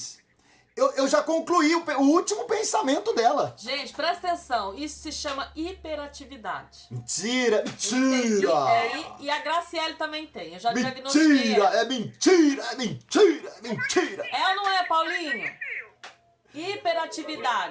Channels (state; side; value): identical; both; correlation 1.00